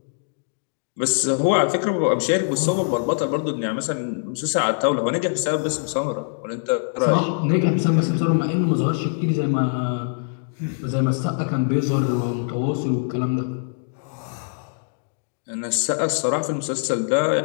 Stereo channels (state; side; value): silent; right; digital silence